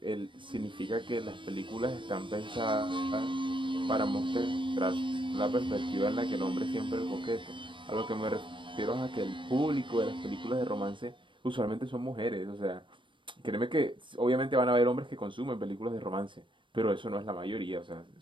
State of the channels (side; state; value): left; late; 0.24 ms